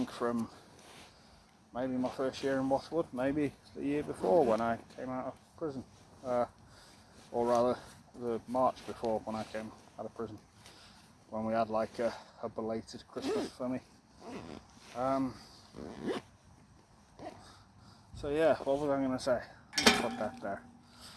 from maybe my first year in Bothwood, maybe the year before when I came out of prison, or rather the March before when I came out of prison, when we had like a belated Christmas for me. So yeah, what was I going to say? Let's put that there.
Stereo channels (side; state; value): both; identical; correlation 1.00